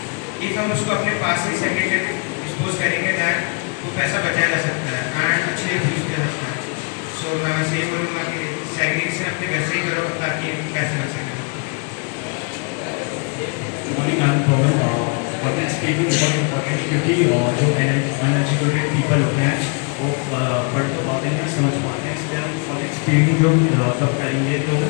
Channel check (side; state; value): right; quieter; 36.1 dB